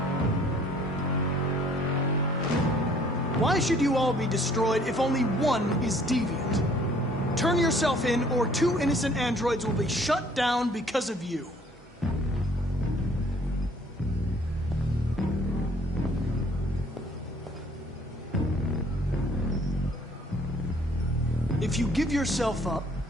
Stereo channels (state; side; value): normal; both; correlation 0.58